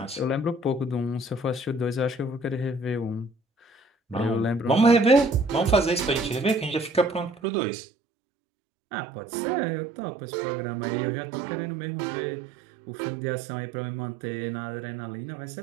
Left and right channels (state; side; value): drops out; left; at 7.4 s